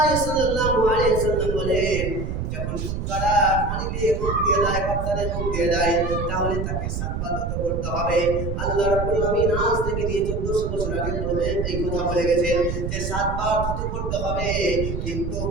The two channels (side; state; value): right; noise; rumble, 3 dB below the sound